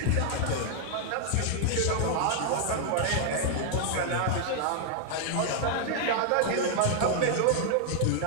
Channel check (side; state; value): both; different; correlation 0.00